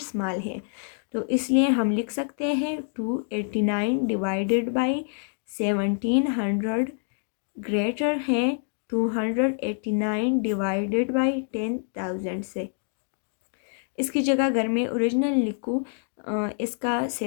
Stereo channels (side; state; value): right; silent; 61 dB below the other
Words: है। तो इसलिए हम लिख सकते हैं 289 डिवाइडेड बाई 1700 ग्रेटर है 289 डिवाइडेड बाई 10,000 से। इसकी जगह अगर मैं ओरिजिनल लिखूँ, इसका